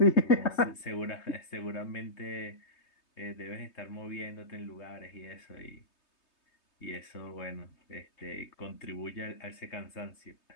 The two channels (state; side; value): late; right; 3.3 ms